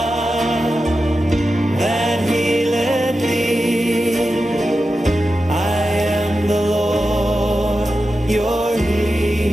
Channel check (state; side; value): normal; both; correlation 0.91